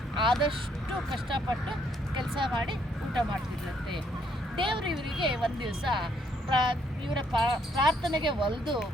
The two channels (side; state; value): both; normal; correlation 0.70